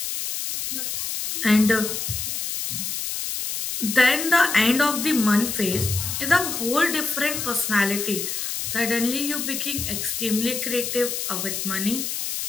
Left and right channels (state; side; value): noise; left; hiss, 3 dB below the sound